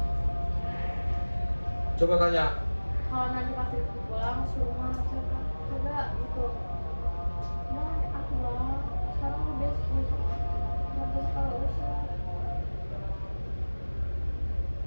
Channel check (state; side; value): inverted; both; correlation -1.00